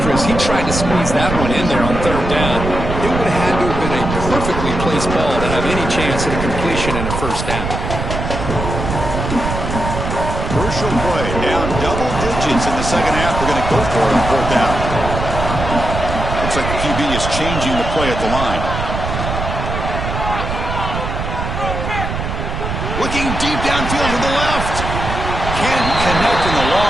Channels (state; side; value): noise; right; rumble, 4 dB below the sound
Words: Chris, he tried to squeeze that one in there on 3rd down. It would have had to have been a perfectly placed ball to have any chance at a completion and a 1st down. Crucial play, down double digits in the 2nd half. They're going to go for it on 4th down. Looks like the QB is changing the play at the line. Looking deep downfield to the left. Can't connect in the